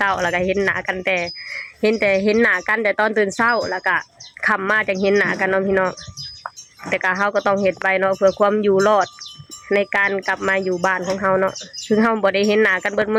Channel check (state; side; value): identical; both; correlation 1.00